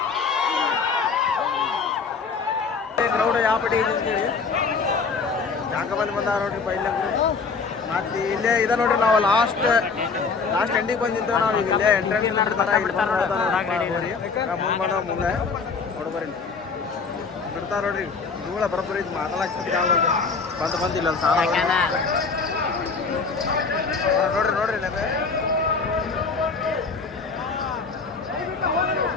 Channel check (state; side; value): quieter; right; 4.9 dB